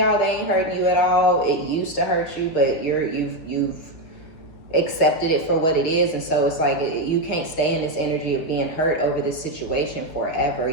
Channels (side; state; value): right; late; 6.3 ms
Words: they ain't hurting you at all. It used to hurt you, but you've accepted it for what it is. And so it's like, you can't stay in this energy of being hurt over this situation forever.